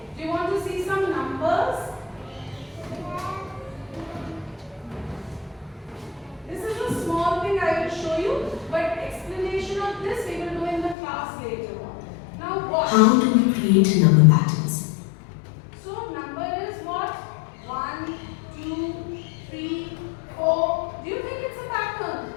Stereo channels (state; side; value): drops out; right; at 11.0 s